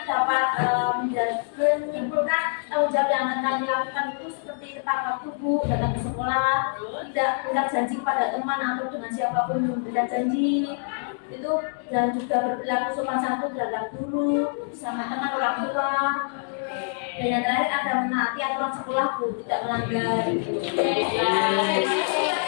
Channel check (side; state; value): right; silent; 61 dB below the other